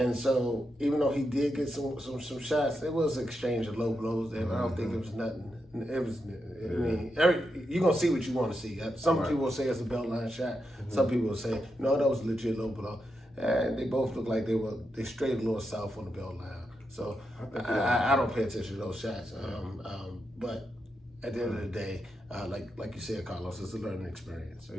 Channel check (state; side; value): normal; both; correlation 0.85